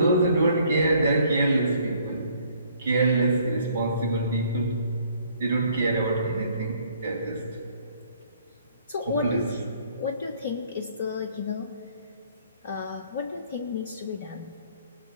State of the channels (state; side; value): inverted; both; correlation -0.61